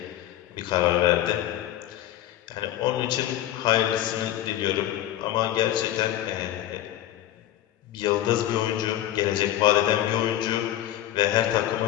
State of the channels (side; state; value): right; quieter; 13.0 dB